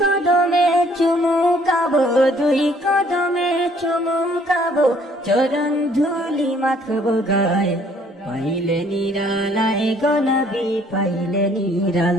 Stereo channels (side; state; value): both; normal; correlation 0.61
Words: চুমু খাবো, দুই কদমে চুমু খাবো, চরণ ধুলি মাখবো গায়ে। পাইলে নিরালায় গনবি, পাইলে